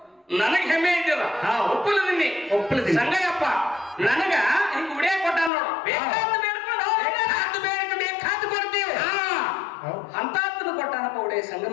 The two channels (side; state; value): right; drops out; at 5.5 s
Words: ನನಗ್ ಹೆಮ್ಮೆ ಇದ್ದಿಲ್ಲ ಒಪ್ಪಲದಿನಿ ಸಂಗಯ್ಯಪ್ಪ ನನಗ ಹಿಂಗ ಉಡಿಯ ಕೊಟ್ಟ ನೋಡು ಬೇಕಾದ ಬೇಡ್ಕೊಂಡು ಬೇಕಾದ ಕೊಡ್ತೀವಿ ಅಂತಾತ್ನ ಕೊಟ್ಟಾನಪ್ಪ ಉಡಿಯ